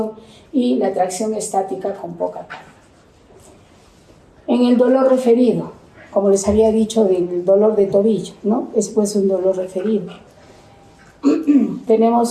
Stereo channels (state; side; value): identical; both; correlation 1.00